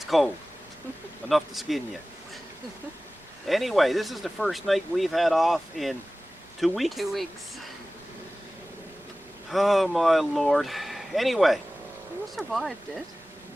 cold. Enough to skin you. Anyway, this is the first night we've had off in 2 weeks. 2 weeks. Oh my Lord. Anyway, You survived it.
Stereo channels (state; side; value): noise; right; rumble, 30 dB below the sound